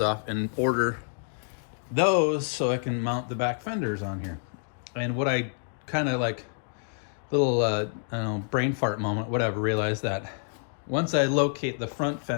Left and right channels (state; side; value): silent; right; digital silence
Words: and order those so I can mount the back fenders on here. And what I kind of like, little I don't know, brain fart moment, whatever, realized that once I locate the front